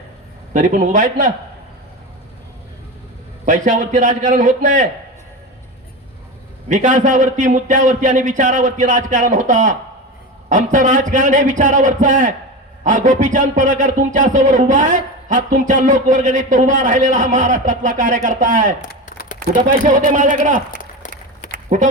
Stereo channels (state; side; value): normal; both; correlation 0.23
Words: तरी पण उभा आहेत ना. पैशावरती राजकारण होत नाही. विकासावरती, मुद्द्यावरती आणि विचारावरती राजकारण होता. आमचं राजकारण हे विचारावरचं आहे. हा गोपीचंद पडळकर तुमच्या समोर उभा आहे. हा तुमच्या लोकवर्गणीत उभा राहिलेला हा महाराष्ट्रातला कार्यकर्ता आहे. कुठं पैसे होते माझ्याकडं?